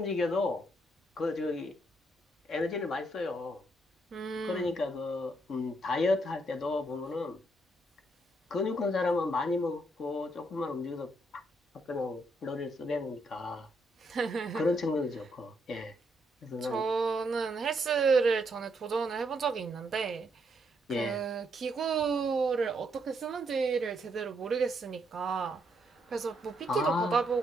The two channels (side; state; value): both; normal; correlation 0.75